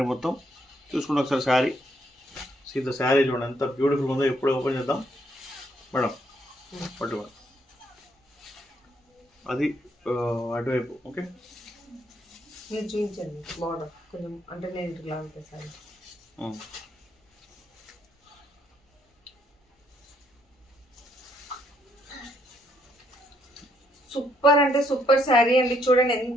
మొత్తం. చూసుకుంటే ఒకసారి శారీ సీత శారీ చూడండి ఎంత బ్యూటిఫుల్ ఉందో. ఎప్పుడు ఓపెన్ చేద్దాం మేడం, పట్టుకోండి అది అటువైపు. ఓకే మీరు చూపించండి బార్డర్ కొంచెం, అంటే నేను ఇట్లా ఉంటుంది సారీ. సూపర్ అంటే సూపర్ శారీ అండి. చూడండి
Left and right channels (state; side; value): normal; both; correlation 0.72